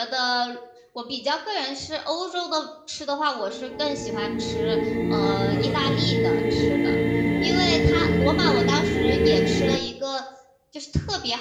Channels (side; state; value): both; identical; correlation 1.00